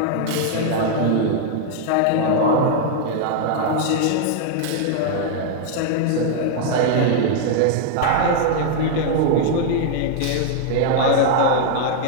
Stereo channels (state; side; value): different; both; correlation 0.00